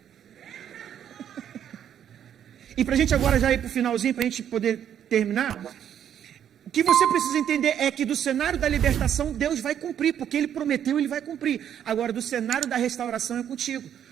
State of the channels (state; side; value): quieter; left; 9.5 dB